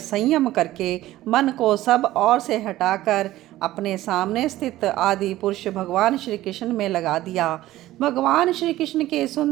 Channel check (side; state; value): left; quieter; 15.4 dB